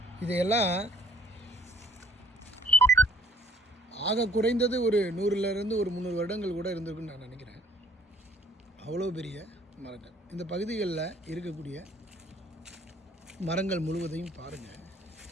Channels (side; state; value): both; normal; correlation 0.55